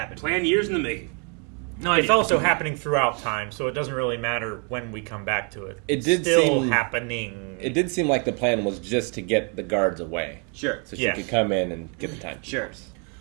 Planned years in the making. No It's idea. also happening throughout time, so it doesn't really matter when we come back to it. It did Still seem- happening. It did seem like the plan was just to get the guards away. Sure. So she Yeah. could come in and get the time. Sure.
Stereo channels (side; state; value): left; quieter; 36.8 dB